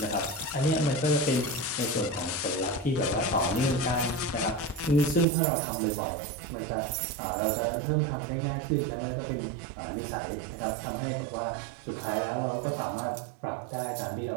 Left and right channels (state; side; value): drops out; left; at 5.2 s